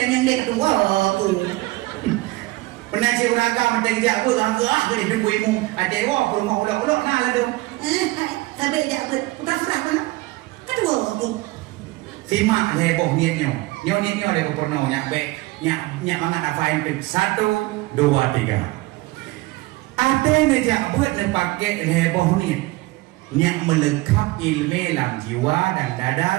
yang dia kedua tu. Pernah si uragam teh dia bớt dari khuyên mùng. Ada wa rumah ulah-ulah nah lah dong. Sampai dia bớt. Udah surah pun. Kedua tu. Simak heboh niatnya heboh pernah nyak mangan apa yang 1, 2, 3 ada ngejak buat pakai heboh niat melekap ilmu dalam jiwa dan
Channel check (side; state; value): left; quieter; 20.9 dB